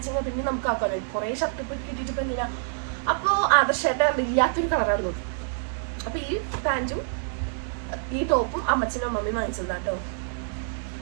പിന്നെ നമുക്ക് ആക്കാമല്ലോ. കുറേ ഷർട്ട് ഇപ്പോൾ കിട്ടിയിട്ട് ഇപ്പം എന്തിനാ. അപ്പോൾ ആദർശമായിട്ട് ഇല്ലാത്തൊരു കളറായിരുന്നു. അപ്പോൾ ഈ പാൻറ്റും ഈ ടോപ്പും അമ്മച്ചനും അമ്മമ്മയും വാങ്ങിച്ചതാണ് കേട്ടോ.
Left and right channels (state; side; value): silent; left; digital silence